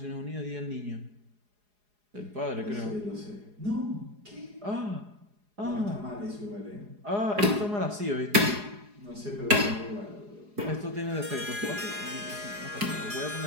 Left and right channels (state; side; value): late; left; 4.8 ms